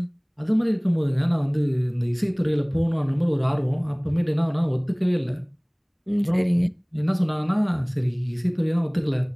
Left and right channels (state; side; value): identical; both; correlation 1.00